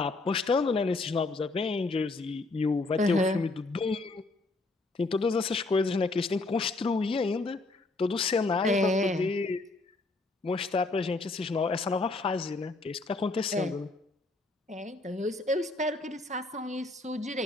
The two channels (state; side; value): quieter; right; 3.2 dB